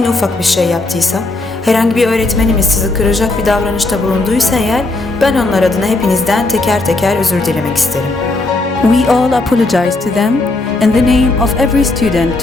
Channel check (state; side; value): quieter; right; 3.0 dB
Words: ufak bir şey yaptıysa, herhangi bir öğretmenimiz sizi kıracak bir davranışta bulunduysa eğer, ben onlar adına hepinizden teker teker özür dilemek isterim. We all apologize to them in the name of every student